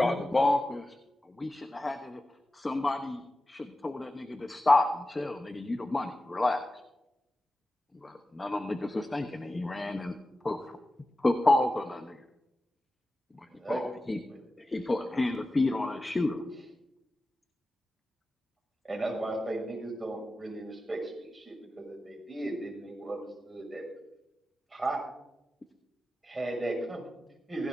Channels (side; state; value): both; normal; correlation 0.94